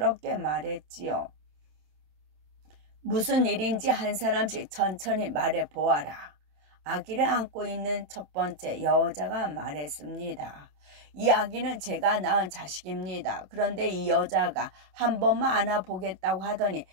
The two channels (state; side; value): late; left; 27 ms